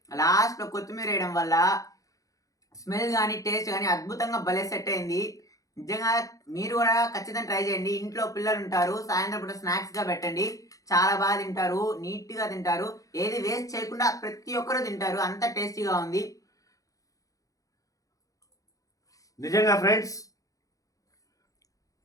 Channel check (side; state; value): right; late; 0.17 ms